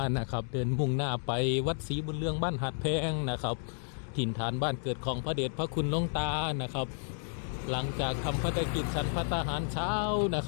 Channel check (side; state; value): right; silent; 57 dB below the other